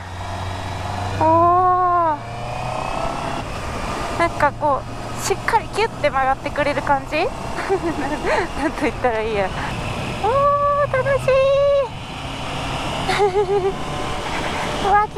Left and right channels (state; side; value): identical; both; correlation 1.00